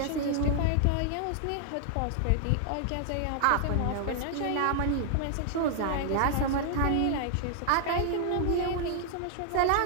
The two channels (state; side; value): different; both; correlation 0.00